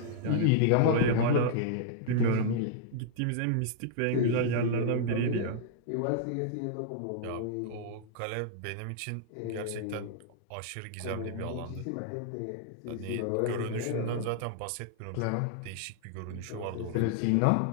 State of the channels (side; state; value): both; different; correlation -0.01